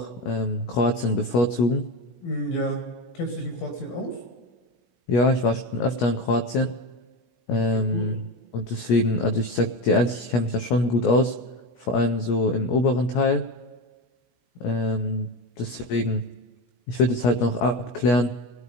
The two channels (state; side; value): late; right; 17 ms